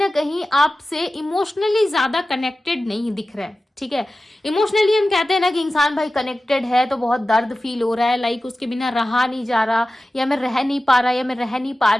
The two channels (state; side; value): normal; both; correlation 0.95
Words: आपसे इमोशनली ज्यादा कनेक्टेड नहीं दिख रहा है। ठीक है, इमोशनली हम कहते हैं ना कि इंसान भाई कनेक्टेड है तो बहुत दर्द फील हो रहा है, लाइक उसके बिना रहा नहीं जा रहा, या मैं रह नहीं पा रहा, या मैं रह नहीं पा